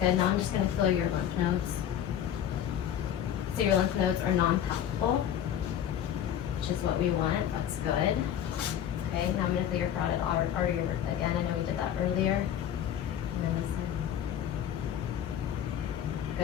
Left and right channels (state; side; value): quieter; right; 10.0 dB